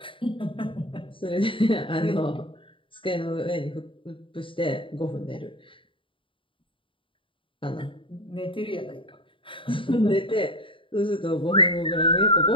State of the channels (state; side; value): late; right; 0.25 ms